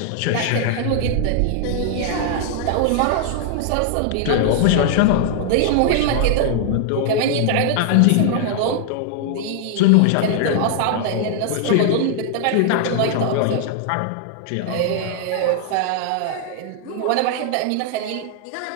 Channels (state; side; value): different; both; correlation 0.00